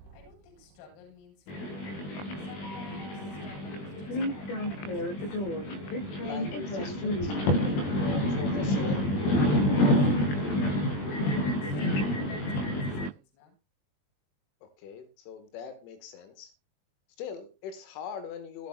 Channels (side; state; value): right; late; 21 ms